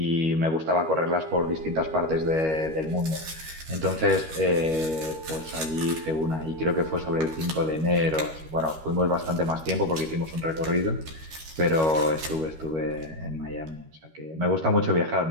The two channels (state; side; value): late; left; 13 ms